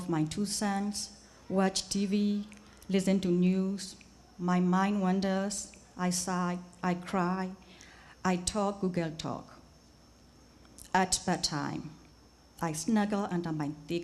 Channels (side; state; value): both; identical; correlation 1.00